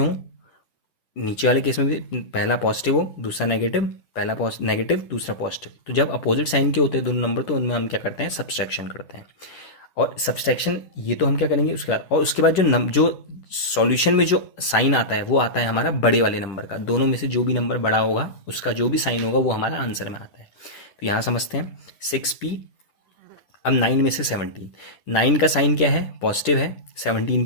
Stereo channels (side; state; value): right; late; 10 ms